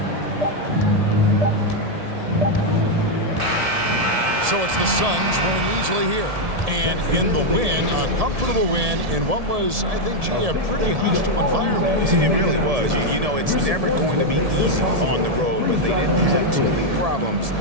So it's the Suns winning easily here. And in the win, a comfortable win in what was, I think, a pretty hostile environment. It really was. You know, it's never going to be easy on the road, but they didn't have too many problems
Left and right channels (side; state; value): left; late; 1.7 ms